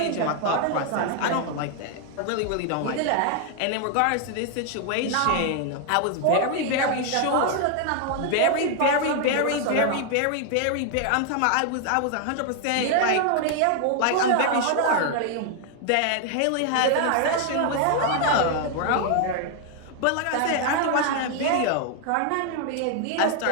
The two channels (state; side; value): different; both; correlation 0.00